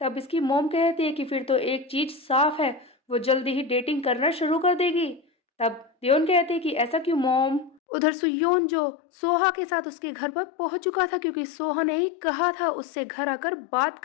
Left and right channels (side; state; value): right; drops out; at 7.8 s